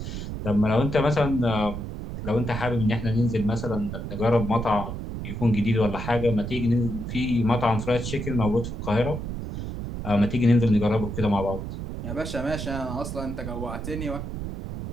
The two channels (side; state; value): right; noise; rumble, 6 dB below the sound